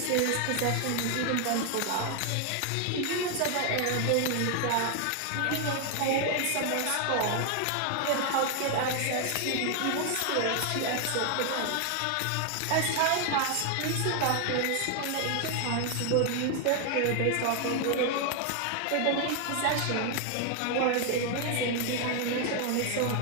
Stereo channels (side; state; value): both; different; correlation 0.00